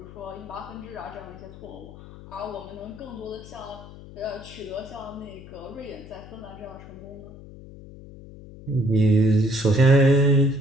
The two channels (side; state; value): left; noise; hum, 16 dB below the sound